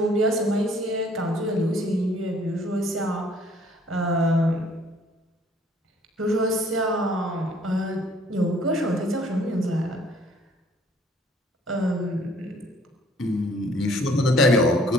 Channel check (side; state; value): both; normal; correlation 0.59